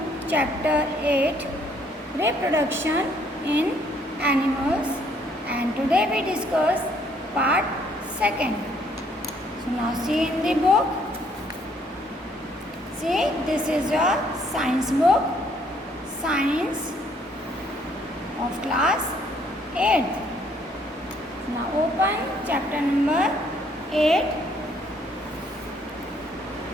chapter 8, reproduction in animals, and today we discuss part 2nd. So now see in the book. See, this is your science book, science of class 8. Now open chapter number 8.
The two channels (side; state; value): both; normal; correlation 0.66